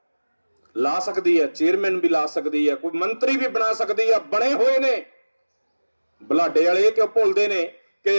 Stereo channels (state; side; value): inverted; both; correlation -1.00